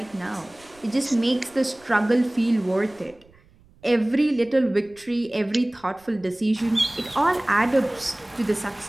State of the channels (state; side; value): noise; right; rumble, 29 dB below the sound